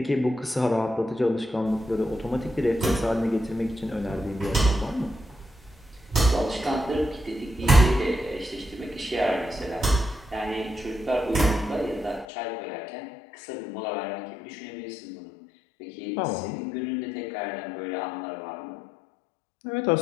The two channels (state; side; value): drops out; right; at 12.2 s